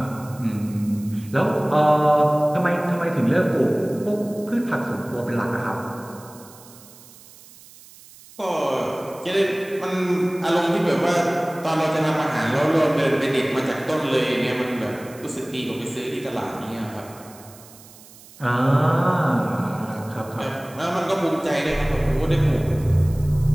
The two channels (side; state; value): right; noise; hiss, 22 dB below the sound